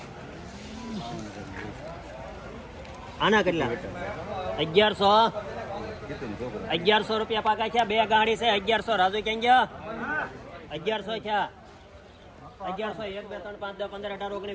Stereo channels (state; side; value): identical; both; correlation 1.00